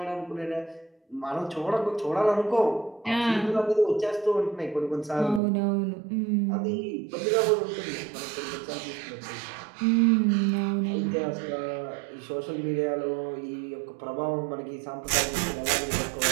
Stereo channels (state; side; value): drops out; left; at 5.4 s